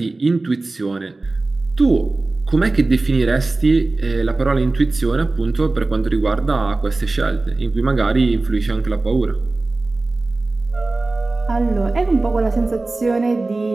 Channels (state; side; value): quieter; left; 3.2 dB